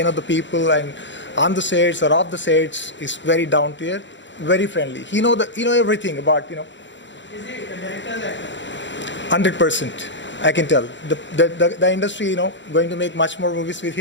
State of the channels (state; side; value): late; right; 0.53 ms